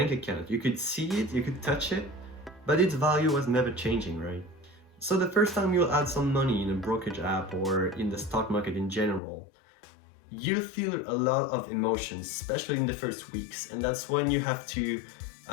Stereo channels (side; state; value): right; drops out; at 9.2 s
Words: account. You could see it, you could touch it, but its value was never changing, right? So the first time you'll add some money in a brokerage app or in the stock market in general, you'll feel a lot of emotions, especially in the first weeks. And that's when you have to